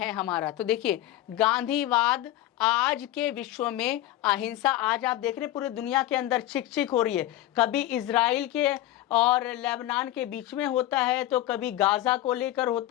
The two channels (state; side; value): quieter; right; 14.5 dB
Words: हमारा। तो देखिए, गांधीवाद आज के विश्व में, अहिंसा आज आप देख रहे हैं पूरी दुनिया के अंदर चिक हो रही है। कभी इजराइल के और लेबनान के बीच में होता है, तो कभी गाजा को लेकर